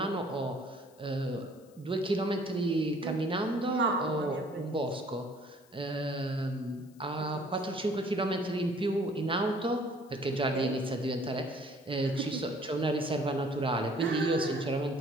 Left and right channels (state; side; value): noise; left; hiss, 30 dB below the sound